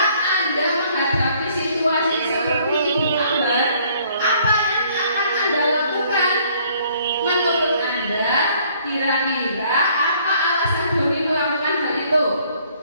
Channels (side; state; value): both; inverted; correlation -0.62